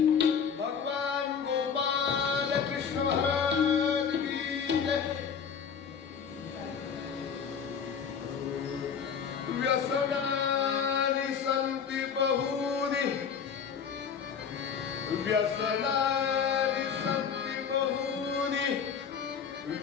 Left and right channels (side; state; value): right; quieter; 7.0 dB